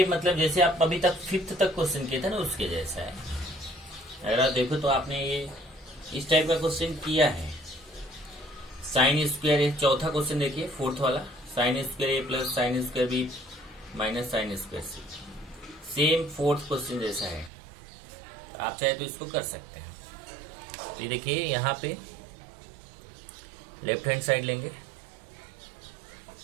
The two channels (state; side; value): drops out; left; at 17.5 s